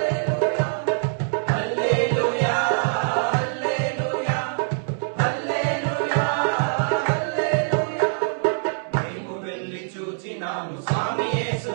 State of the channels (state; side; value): silent; left; 63 dB below the other